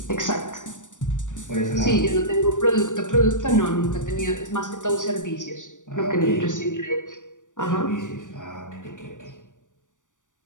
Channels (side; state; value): right; late; 0.87 ms